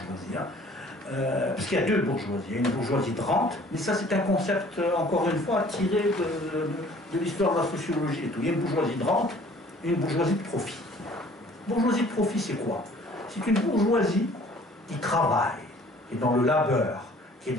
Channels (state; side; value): normal; both; correlation 0.53